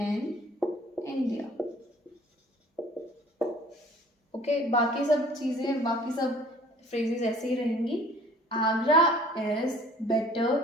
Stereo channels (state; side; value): normal; both; correlation 0.51